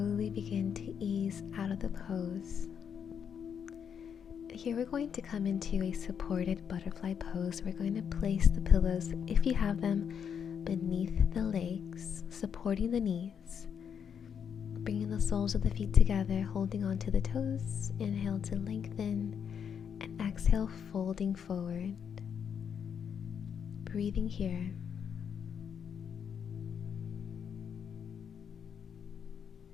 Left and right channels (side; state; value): right; quieter; 7.6 dB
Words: begin to ease out of the pose. Here we're going to come into a supported butterfly pose. We're going to place the pillows, if you have them, beneath the legs, supporting the knees. Bringing the soles of the feet together, holding onto the toes. Inhale to lengthen, and exhale, folding forward. Breathing here.